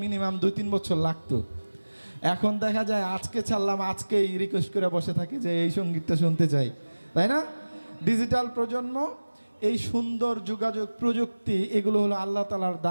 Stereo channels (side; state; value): both; inverted; correlation -1.00